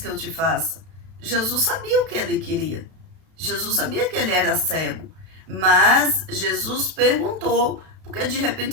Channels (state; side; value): late; left; 32 ms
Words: eu te faça? Jesus sabia o que ele queria. Jesus sabia que ele era cego, mas Jesus perguntou, porque de